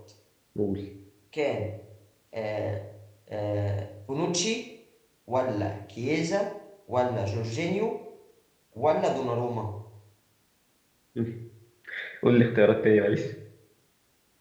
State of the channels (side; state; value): both; identical; correlation 1.00